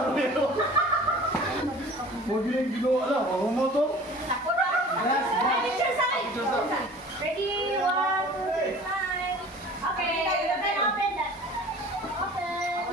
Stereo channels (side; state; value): both; normal; correlation 0.44